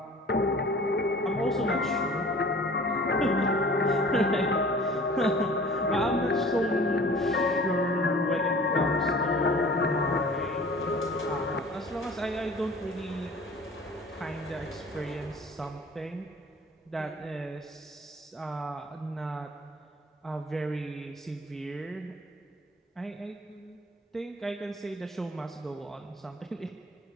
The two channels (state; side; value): normal; both; correlation 0.46